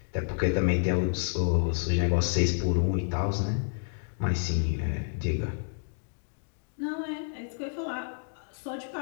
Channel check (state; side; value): silent; right; digital silence